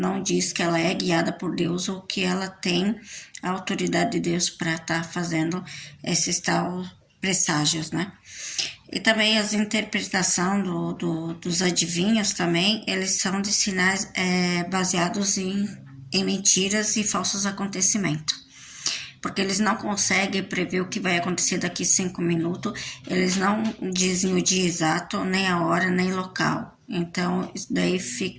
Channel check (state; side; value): identical; both; correlation 1.00